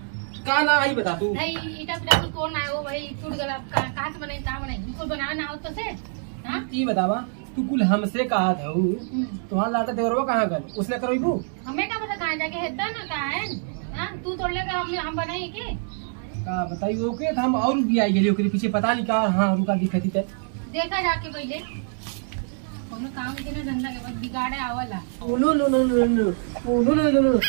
का ना आई बता तू। नहीं इटा पिटा कुछ कौन आए हो भाई टूट गला कहाँ से बनाई कहाँ बनाई कुछ बनाना ना हो तो से। हाँ ये बतावा तू कुल हमसे कहा था तुम्हारा लाटा देवरवा कहाँ गल उसने करो हमें क्या पता कहाँ जाके हेदा ना कहाँ है? तू तोड़ लेगा हम बनाई के का बताई ओके हम और भी आई गई ओकरे पीछे पता नहीं का। हाँ रुका दिखती थे देखा जाके पहले कोनो काम के ना धंधा के बाद बिगाड़े आवला।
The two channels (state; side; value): silent; left; 61 dB below the other